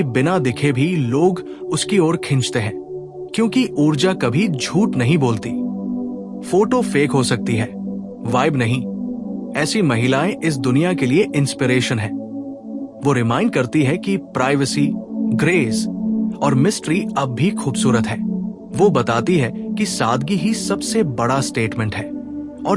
बिना दिखे भी लोग उसकी ओर खींचते हैं, क्योंकि ऊर्जा कभी झूठ नहीं बोलती। फोटो फेक हो सकती है, वाइब नहीं। ऐसी महिलाएं इस दुनिया के लिए इंस्पिरेशन है। वो रिमाइंड करती है कि प्राइवेसी, ग्रेस और मिस्ट्री अब भी खूबसूरत है। वो बताती है कि सादगी ही सबसे बड़ा स्टेटमेंट है,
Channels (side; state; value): both; identical; correlation 1.00